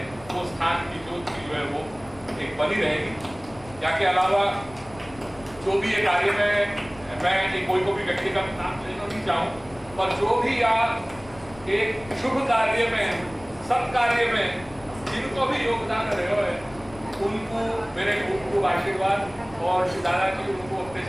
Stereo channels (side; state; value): left; noise; rumble, 21 dB below the sound